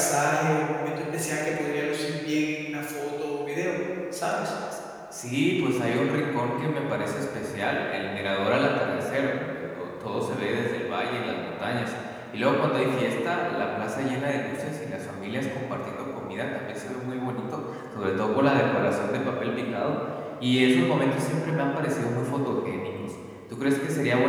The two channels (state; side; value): identical; both; correlation 1.00